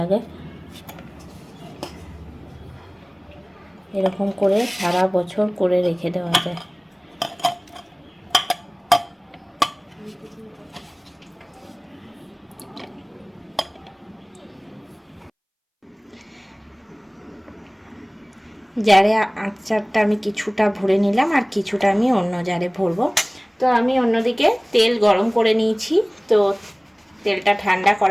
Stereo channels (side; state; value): both; identical; correlation 1.00